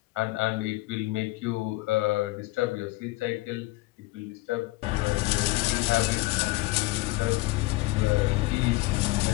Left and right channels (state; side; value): quieter; right; 20.6 dB